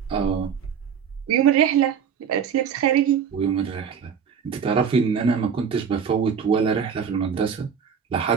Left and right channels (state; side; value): quieter; left; 7.2 dB